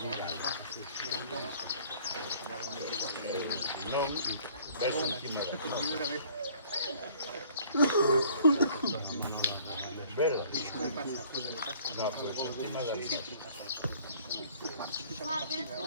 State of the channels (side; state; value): both; inverted; correlation -0.55